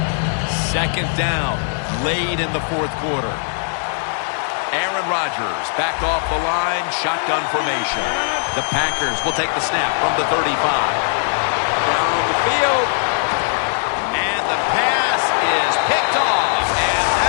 Second down, late in the 4th quarter. Aaron Rodgers back off the line, shotgun formation. The Packers will take the snap from the 35. Down on the field. And the pass is picked off, and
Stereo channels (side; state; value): right; silent; digital silence